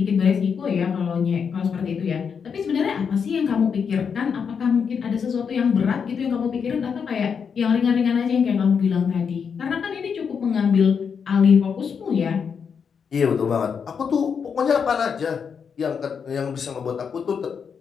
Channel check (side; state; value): right; quieter; 6.5 dB